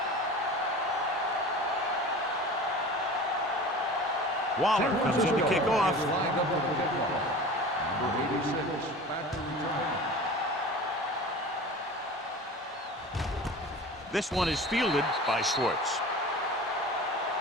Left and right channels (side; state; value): both; normal; correlation 0.37